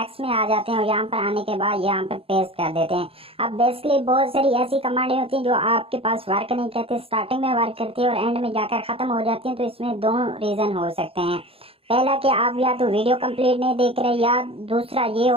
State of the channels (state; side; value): late; left; 0.27 ms